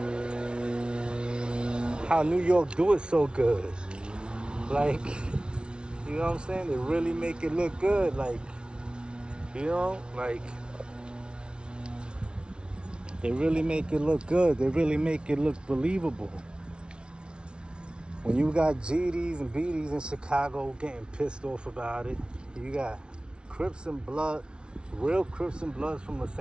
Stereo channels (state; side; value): late; left; 0.056 ms